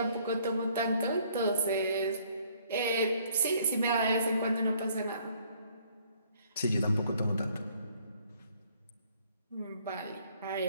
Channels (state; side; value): inverted; both; correlation -0.62